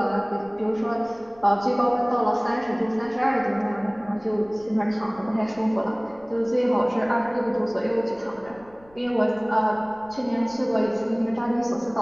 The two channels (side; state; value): left; noise; rumble, 27 dB below the sound